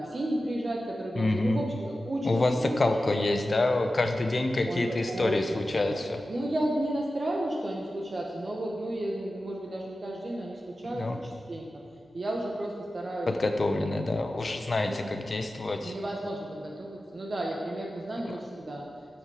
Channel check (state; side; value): normal; both; correlation 0.93